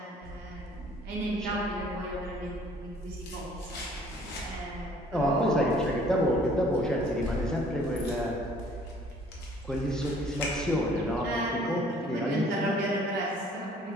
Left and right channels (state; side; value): normal; both; correlation 0.56